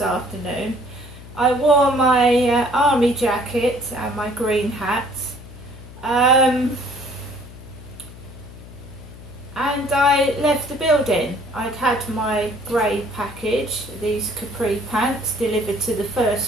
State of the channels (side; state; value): left; noise; hum, 17 dB below the sound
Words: I wore my army jacket and my green hat, and I left the building. I'd had my grey package, these capri pants, delivered to the